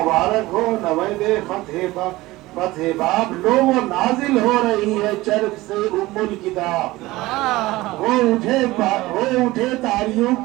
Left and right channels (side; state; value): left; quieter; 19.0 dB